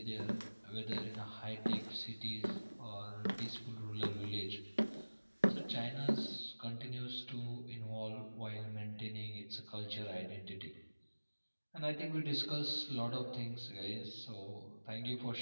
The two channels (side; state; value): both; inverted; correlation -1.00